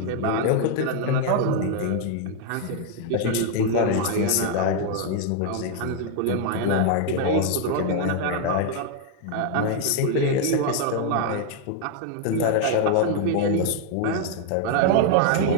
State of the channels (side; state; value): both; different; correlation 0.00